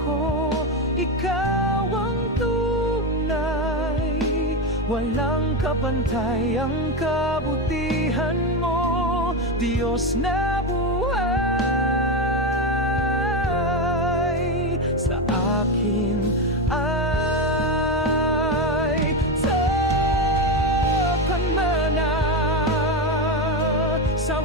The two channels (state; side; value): normal; both; correlation 0.13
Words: ko, ikaw ang tunay. Walang kapantay ang kabutihan mo, Diyos na buhay. Sa akin ay takan mana, sa